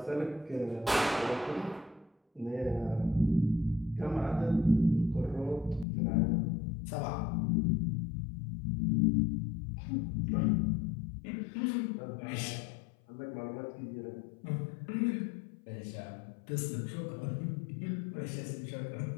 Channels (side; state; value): right; drops out; at 5.9 s